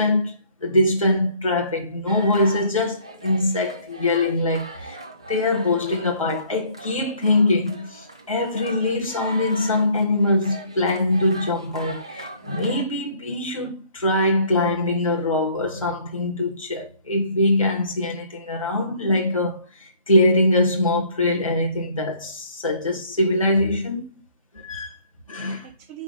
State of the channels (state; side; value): inverted; both; correlation -0.59